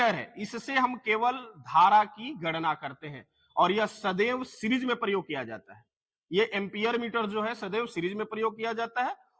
है। इससे हम केवल धारा की गणना करते हैं, और यह सदैव सीरीज में प्रयोग किया जाता है। ये एम्पियर मीटर जो है सदैव सीरीज में प्रयोग किया जाता है,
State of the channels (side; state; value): both; identical; correlation 1.00